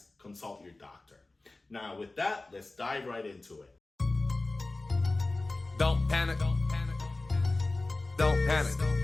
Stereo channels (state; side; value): quieter; right; 3.1 dB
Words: consult your doctor. Now with that, let's dive right into it. Don't panic. Don't panic. Don't panic.